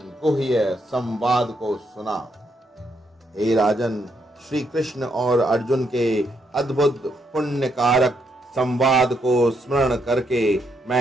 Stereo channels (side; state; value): both; normal; correlation 0.77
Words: गुह्य संवाद को सुना। हे राजन, श्री कृष्ण और अर्जुन के अद्भुत पुण्यकारक संवाद को स्मरण करके